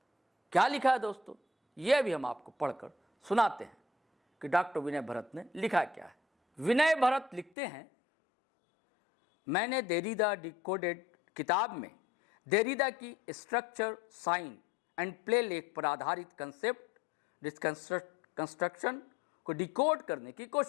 क्या लिखा है दोस्तों, यह भी हम आपको पढ़कर सुनाते हैं कि डॉक्टर विनय भरत ने लिखा क्या है। विनय भरत लिखते हैं, मैंने देरीदा डिकोडेड किताब में देरीदा की स्ट्रक्चर, साइन एंड प्ले लेख पर आधारित कंसेप्ट कंस्ट्रक्शन को डिकोड करने की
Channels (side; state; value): right; drops out; at 7.5 s